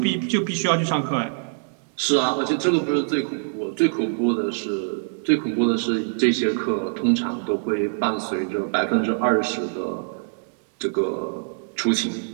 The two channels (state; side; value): silent; left; digital silence